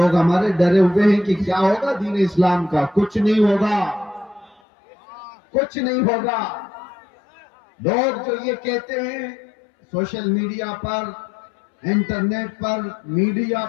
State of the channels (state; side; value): drops out; right; at 4.6 s